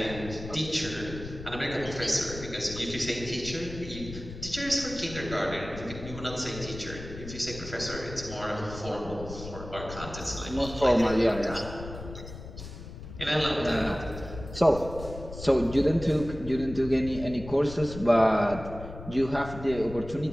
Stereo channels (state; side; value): noise; left; rumble, 12 dB below the sound